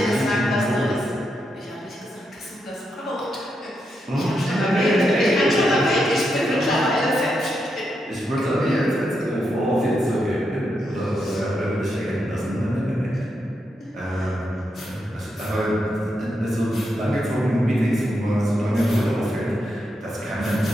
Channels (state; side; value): normal; both; correlation 0.83